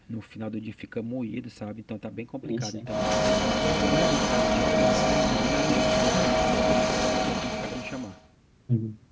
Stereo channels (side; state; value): both; identical; correlation 1.00